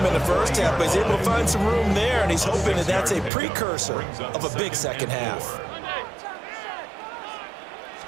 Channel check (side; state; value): left; drops out; at 3.3 s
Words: in the first half, but he's able to find some room there, and he's hoping that that's a precursor of a big second half.